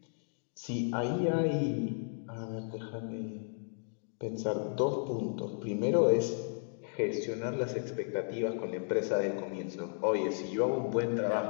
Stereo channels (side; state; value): right; silent; digital silence